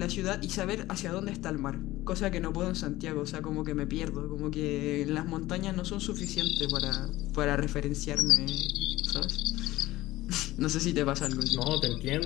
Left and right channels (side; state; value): right; quieter; 17.2 dB